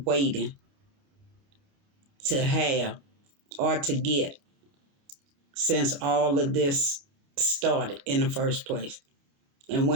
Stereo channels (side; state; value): left; late; 29 ms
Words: waiting to have or to get since all of this started in the first place. And